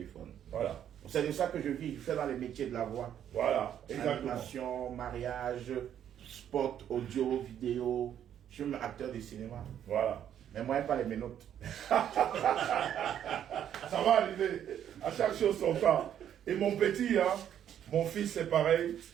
Voilà. C'est de ça que je vis, je fais dans les métiers de la voix. Voilà, exactement. Animation, mariage, spot, audio, vidéo. Je suis même acteur de cinéma. Voilà. Mais moi, pas les menottes. Ça va arriver. À chaque chose son temps. Et mon petit, hein, mon fils, c'est pareil.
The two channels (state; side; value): quieter; left; 9.9 dB